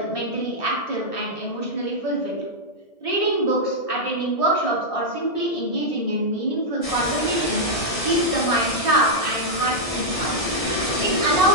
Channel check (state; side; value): late; right; 1.7 ms